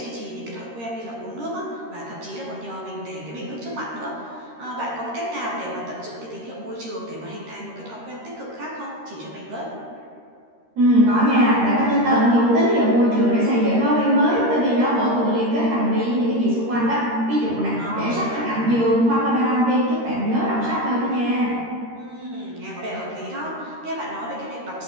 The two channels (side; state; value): left; late; 13 ms